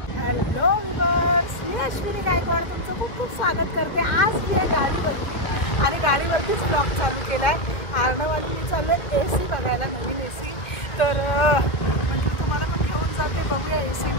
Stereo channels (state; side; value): late; right; 1.8 ms